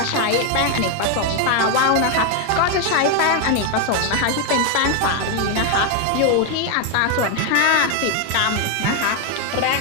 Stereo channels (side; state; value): both; different; correlation 0.01